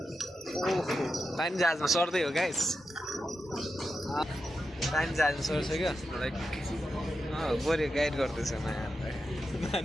पानी जहाजमा सर्दै हो गाइस पानी जहाजमा सर्छ क्या लाइक बोरे गाइड गर्दैछ मायालाई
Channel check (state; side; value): normal; both; correlation 0.89